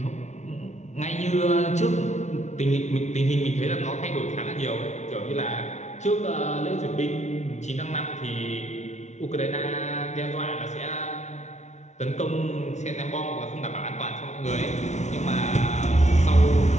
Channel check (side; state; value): right; late; 0.33 ms